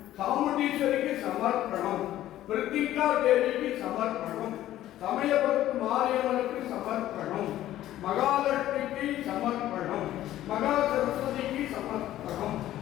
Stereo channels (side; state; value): right; quieter; 13.6 dB